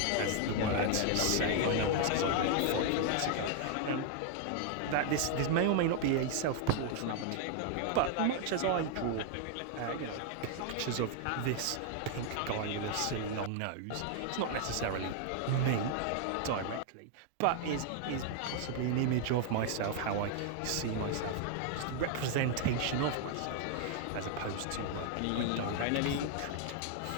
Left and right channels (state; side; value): different; both; correlation 0.00